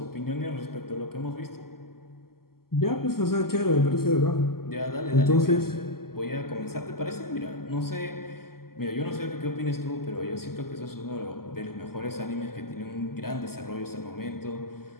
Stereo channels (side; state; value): right; late; 0.93 ms